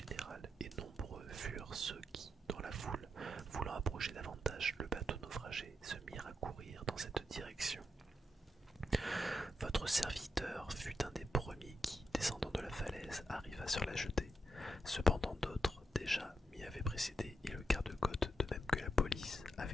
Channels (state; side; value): normal; both; correlation 0.84